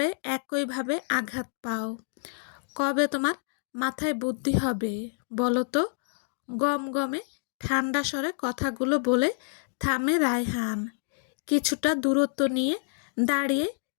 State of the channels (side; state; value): right; silent; digital silence